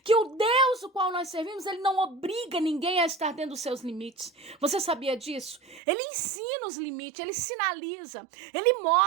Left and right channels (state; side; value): drops out; left; at 5.8 s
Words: que o Deus o qual nós servimos, ele não obriga ninguém a estar dentro dos seus limites. Você sabia disso? Ele ensina os limites, ele sinaliza, ele